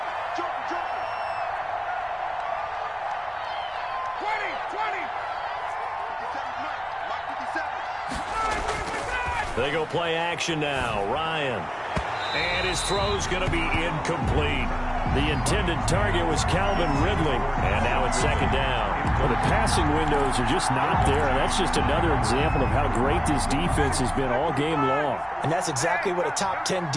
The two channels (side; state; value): both; identical; correlation 1.00